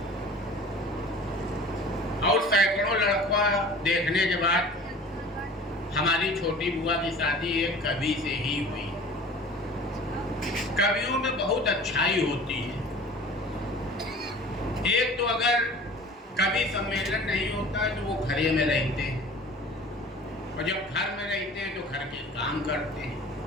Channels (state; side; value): normal; both; correlation 0.43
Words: और सैकड़ों लड़का देखने के बाद हमारी छोटी बुआ की शादी एक कवि से ही हुई। कवियों में बहुत अच्छाई होती है। एक तो अगर कवि सम्मेलन नहीं होता है तो वो घरे में रहते हैं, और जब घर में रहते हैं तो घर के काम करते हैं।